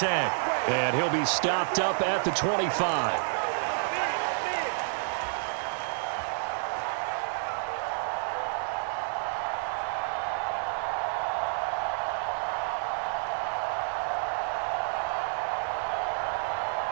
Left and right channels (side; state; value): left; silent; digital silence